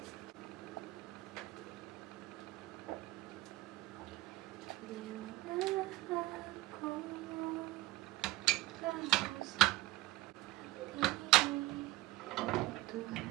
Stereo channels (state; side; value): quieter; left; 18.1 dB